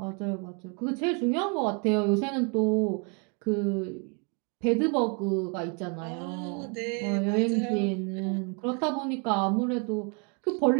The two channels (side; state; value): left; quieter; 36.0 dB